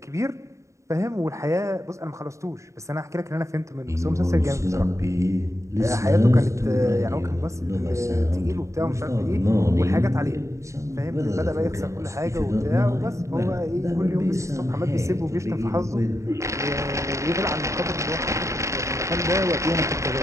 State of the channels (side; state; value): left; late; 0.14 ms